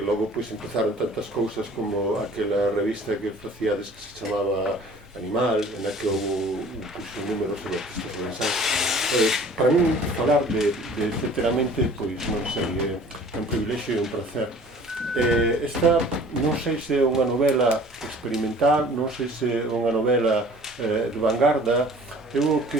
pois empezaron tantas cousas como aquela revista que facíades que se chamaba Animal, na que houve un número sobre artistas forensanos. Para min falar de etcéteramente, pois non sei, é un privilexio e un placer. Esta non sei se é unha novela experimental, non sei se é unha novela de vanguarda. Eu o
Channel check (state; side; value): normal; both; correlation 0.49